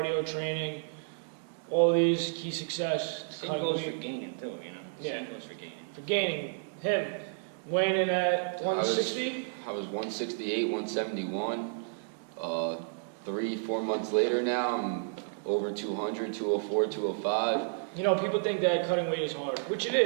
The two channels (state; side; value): silent; left; digital silence